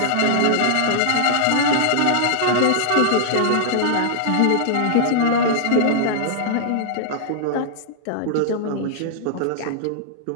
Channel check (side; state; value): both; different; correlation -0.01